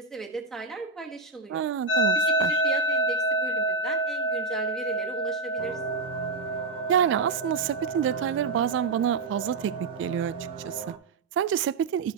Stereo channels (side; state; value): left; quieter; 4.0 dB